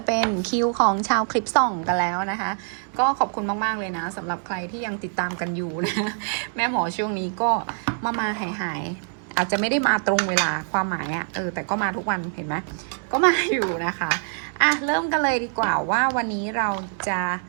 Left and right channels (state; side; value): silent; left; 61 dB below the other